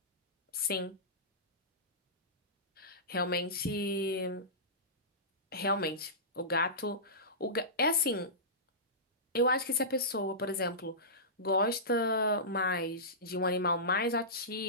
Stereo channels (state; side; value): normal; both; correlation -0.19